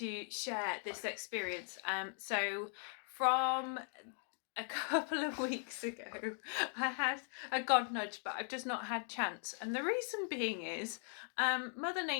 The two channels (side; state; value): right; silent; 51 dB below the other